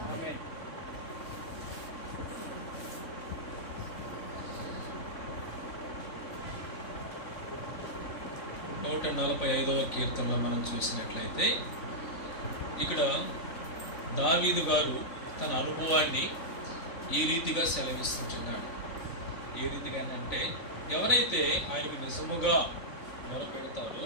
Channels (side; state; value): right; late; 3.9 ms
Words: ఆమేన్. 145వ కీర్తనలో మనం చూసినట్లయితే ఇక్కడ దావీదు గారు తన అనుభవాన్ని ఈ రీతిగా సెలవిస్తుంటున్నాడు. ఏ రీతిగానంటే ఎవరైతే ఆయనకు నిజముగా మొరపెడతారో